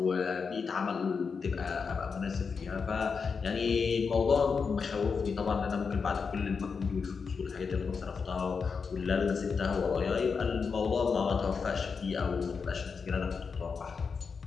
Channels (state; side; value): quieter; right; 5.4 dB